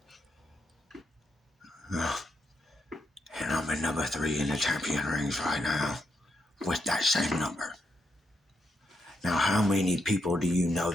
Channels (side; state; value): both; normal; correlation 0.80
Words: And I'm in #3 in the champion rings right now with that same number. Now, how many people do you know